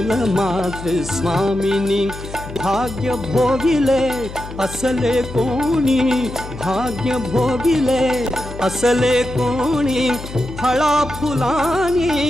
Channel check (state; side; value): noise; left; hum, 12 dB below the sound